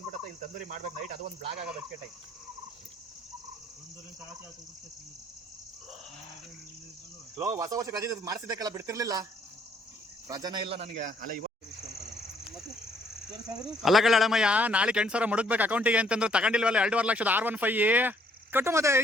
ಇಲ್ಲಿ ತಂದೂರಿ ಮಾಡ್ಬೇಕು ನೈಟ್. ಅದು ಒಂದು ಬ್ಲಾಗ್ ಆಗೋದು ಅಷ್ಟೇ ಟೈಮ್. ಹೊಸ ವರ್ಷ ರಜೆ ಮಾಡಿಸಿದ್ದಕ್ಕೆಲ್ಲ ಬಿಡ್ತಿರ್ಲಿಲ್ಲ. ರಜಾನೇ ಇಲ್ಲ ನನಗೆ. ಅಲ್ಲ ಕಳ್ಳಮ್ಮಯ್ಯ, ನಾಳೆ 8,000 ಮುಡುಕ್ಬೇಕು ಅಕೌಂಟಿಗೆ ಅಂತಂದ್ರೆ ತಗೊಂಡಿಲ್ವಲ್ಲ 2.5 ಲಕ್ಷದ R15 ಕಟ್ಟು. ಮತ್ತೆ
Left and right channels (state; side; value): normal; both; correlation 0.65